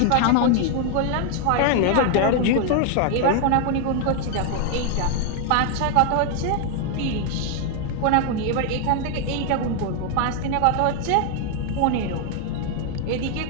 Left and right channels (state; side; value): different; both; correlation 0.00